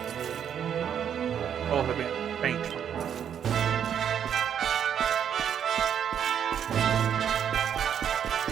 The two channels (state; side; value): quieter; left; 8.7 dB